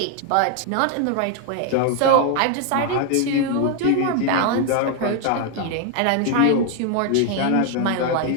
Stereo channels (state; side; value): different; both; correlation 0.00